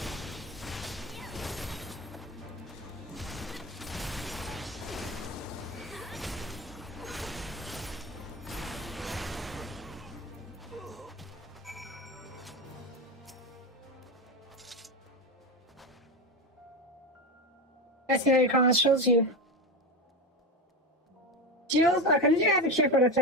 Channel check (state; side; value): normal; both; correlation 0.19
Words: I see how your comments shows you. Jewels are continuing to have a cure for